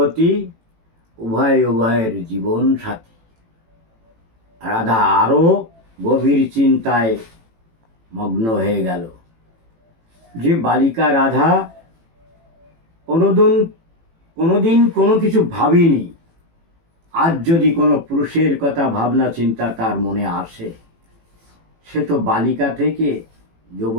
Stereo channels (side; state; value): left; late; 18 ms